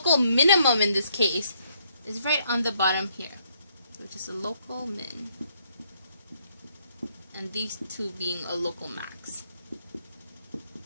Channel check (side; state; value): both; inverted; correlation -0.71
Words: minimum in this case is right on the bottom here, which is a local min, and these two being a local max.